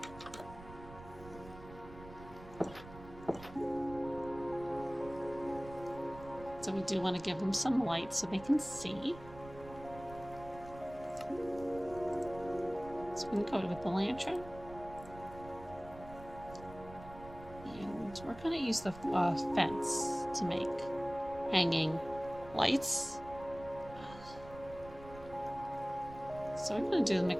So we do want to give them some light so they can see. So we can go with the lantern. And we're going to use the fence to make hanging lights. So we're going to do a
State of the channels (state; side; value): noise; right; rumble, 16 dB below the sound